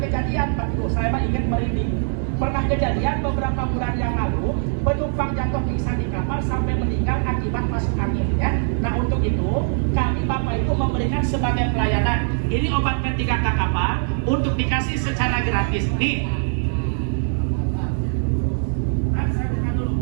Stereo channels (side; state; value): left; silent; 63 dB below the other